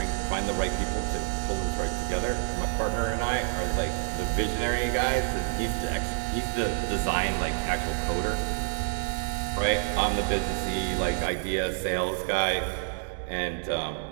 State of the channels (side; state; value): left; silent; digital silence